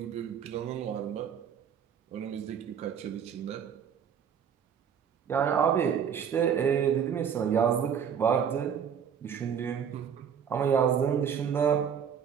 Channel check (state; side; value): quieter; left; 7.8 dB